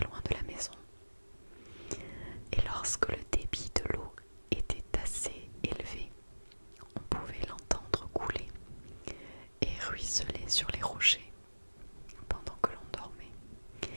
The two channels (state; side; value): inverted; both; correlation -1.00